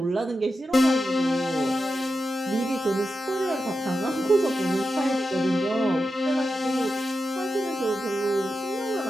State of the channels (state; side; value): normal; both; correlation 0.90